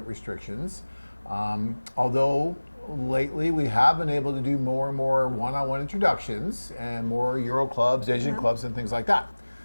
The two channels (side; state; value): both; inverted; correlation -1.00